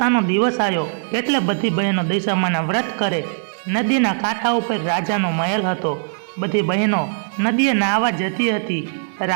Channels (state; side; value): silent; left; digital silence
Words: દિવસ આવ્યો એટલે બધી બહેનો દશામાના વ્રત કરે। નદીના કાંઠા ઉપર રાજાનો મહેલ હતો। બધી બહેનો નદીએ નાહવા જતી હતી।